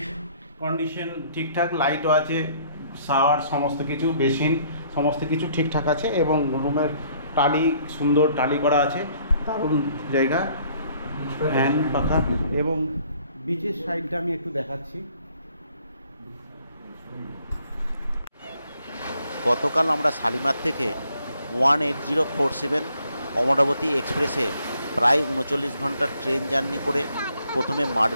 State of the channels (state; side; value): inverted; both; correlation -0.63